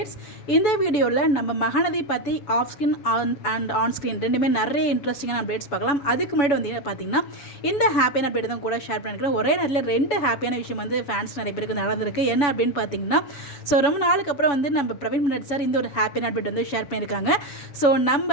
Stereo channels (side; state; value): right; late; 6.9 ms